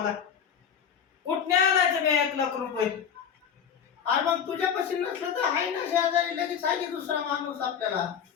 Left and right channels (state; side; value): quieter; right; 7.8 dB